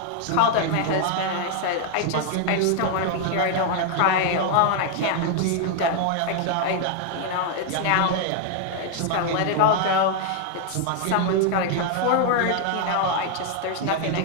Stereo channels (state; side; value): different; both; correlation 0.00